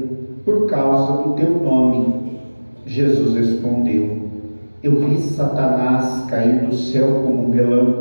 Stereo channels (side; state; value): both; inverted; correlation -1.00